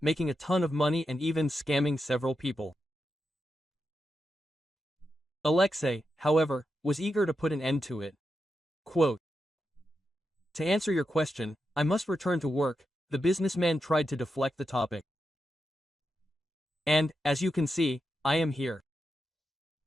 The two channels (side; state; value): both; normal; correlation 0.87